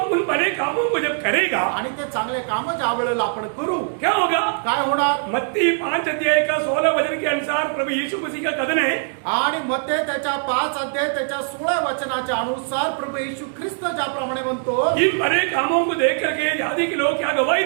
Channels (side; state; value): left; silent; digital silence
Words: उन भले कामों को जब करेगा आणि ते चांगले काम ज्या वेळेला आपण करू क्या होगा? काय होणार मत्ती 5 अध्याय का 16 वचन के अनुसार प्रभु यीशु मसीह का कथन है, आणि मत्ते त्याच्या 5 अध्याय त्याच्या 16 वचनाच्या अनुसार प्रभू येशू ख्रिस्त ज्याप्रमाणे म्हणतो इन भले कामों को देख करके जाति के लोग क्या गवाही